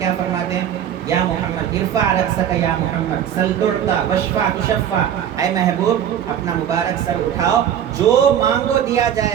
فرماتے ہیں؟ یا محمد ارفع رأسک یا محمد سل تعطی واشفع تشفع. اے محبوب اپنا مبارک سر اٹھاؤ، جو مانگو دیا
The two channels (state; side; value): quieter; left; 9.7 dB